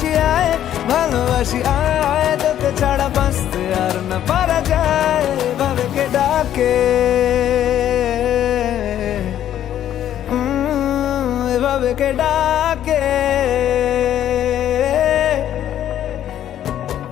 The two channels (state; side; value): quieter; right; 11.1 dB